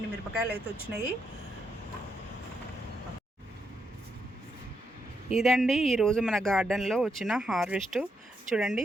మిరపకాయలు అయితే వచ్చినాయి. ఇదండి ఈరోజు మన గార్డెన్లో వచ్చిన హార్వెస్ట్. చూడండి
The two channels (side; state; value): both; normal; correlation 0.80